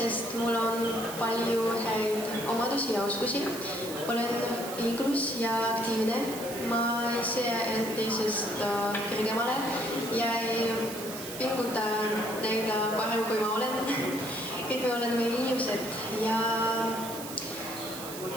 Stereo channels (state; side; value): noise; right; hiss, 10 dB below the sound